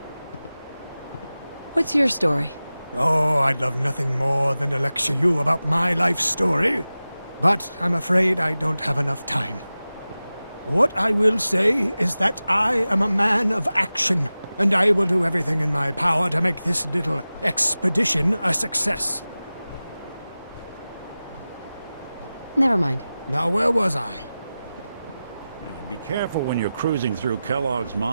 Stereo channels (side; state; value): both; inverted; correlation -0.96